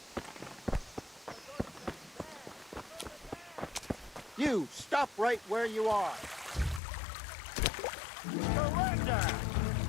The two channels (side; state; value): right; drops out; at 6.8 s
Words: You, stop right where you are. Surrender!